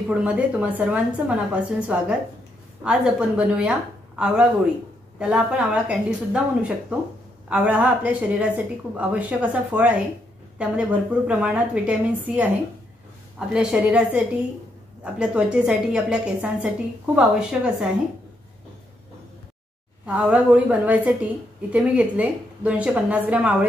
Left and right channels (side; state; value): both; normal; correlation 0.77